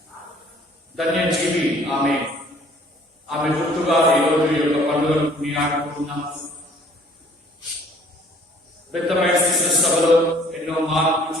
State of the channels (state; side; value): normal; both; correlation 0.56